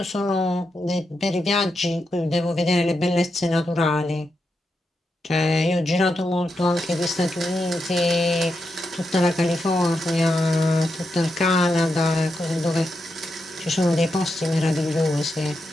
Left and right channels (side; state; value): both; normal; correlation 0.85